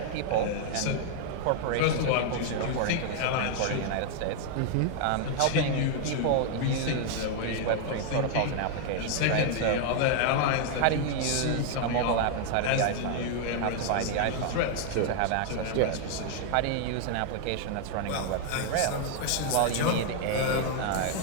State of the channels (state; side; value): different; both; correlation 0.00